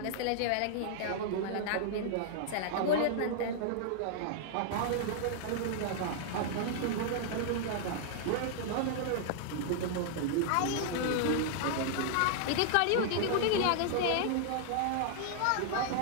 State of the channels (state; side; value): different; both; correlation -0.01